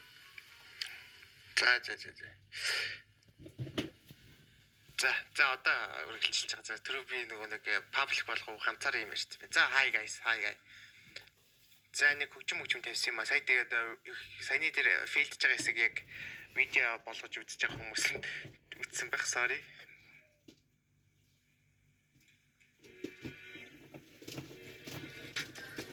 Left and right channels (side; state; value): both; identical; correlation 1.00